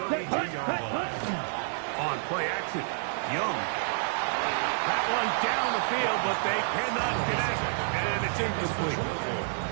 32-yard line. On play action, Young. That one down the field, but they cannot connect, and it's incomplete.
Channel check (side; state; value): left; silent; digital silence